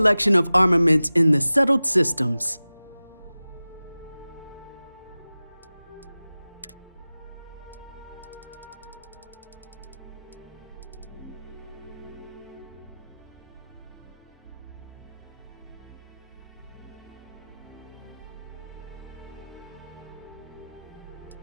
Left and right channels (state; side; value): inverted; both; correlation -0.97